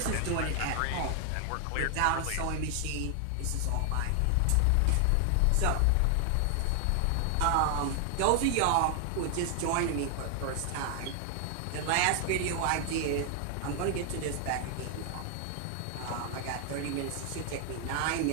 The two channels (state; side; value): different; both; correlation 0.00